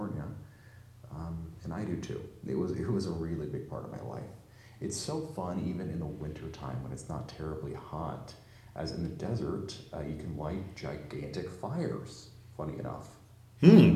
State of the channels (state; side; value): identical; both; correlation 1.00